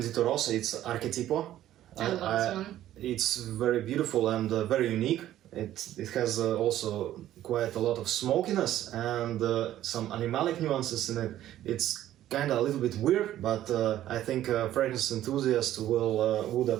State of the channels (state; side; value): quieter; left; 12.9 dB